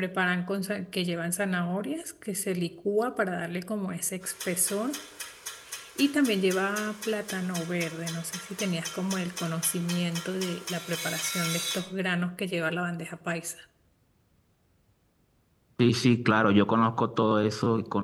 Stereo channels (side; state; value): both; identical; correlation 1.00